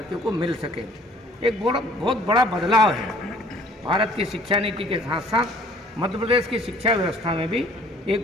को मिल सके। एक बहुत बड़ा बदलाव है भारत की शिक्षा नीति के साथ साथ मध्य प्रदेश की शिक्षा व्यवस्था में भी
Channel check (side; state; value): both; normal; correlation 0.55